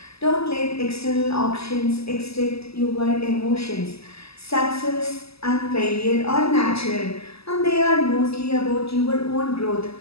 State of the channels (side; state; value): right; late; 0.78 ms